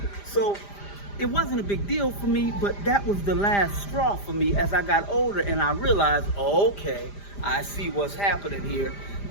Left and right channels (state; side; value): late; right; 5.0 ms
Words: So it wasn't a big deal for me, but that was the last straw for me as I got older, and I realized, okay, I see what's happening here.